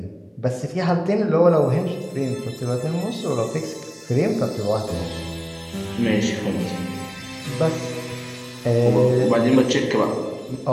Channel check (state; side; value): identical; both; correlation 1.00